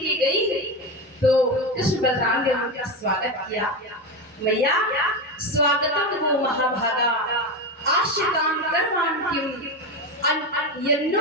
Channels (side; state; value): both; normal; correlation 0.16